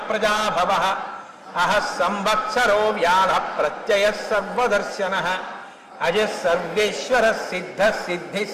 ప్రజాభవః అహ సంవత్సరో వ్యాధ ప్రత్యయ సర్వదర్శనః అజ సర్వేశ్వర సిద్ధ సిద్ధి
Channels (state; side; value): identical; both; correlation 1.00